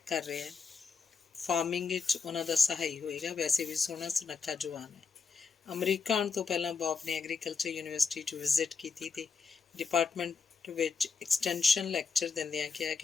ਕਰ ਰਿਹਾ ਹੈ, ਫਾਰਮਿੰਗ ਵਿੱਚ ਉਹਨਾਂ ਦਾ ਸਹਾਈ ਹੋਏਗਾ। ਵੈਸੇ ਵੀ ਸੋਹਣਾ ਸੁਨੱਖਾ ਜਵਾਨ ਹੈ। ਅਮਰੀਕਾ ਆਉਣ ਤੋਂ ਪਹਿਲਾਂ ਬੌਬ ਨੇ ਐਗਰੀਕਲਚਰ ਯੂਨੀਵਰਸਿਟੀ 'ਚ ਵਿਜ਼ਿਟ ਕੀਤੀ ਅਤੇ ਡਿਪਾਰਟਮੈਂਟ ਵਿੱਚ ਐਕਸਟੈਂਸ਼ਨ ਲੈਕਚਰ ਦਿੰਦਿਆਂ ਕਿਹਾ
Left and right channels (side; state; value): right; quieter; 5.2 dB